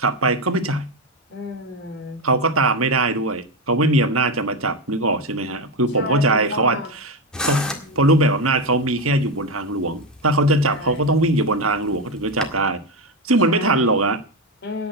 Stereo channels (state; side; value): normal; both; correlation 0.11